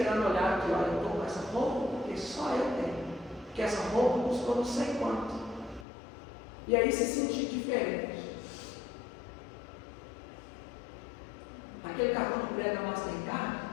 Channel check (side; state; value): right; drops out; at 5.9 s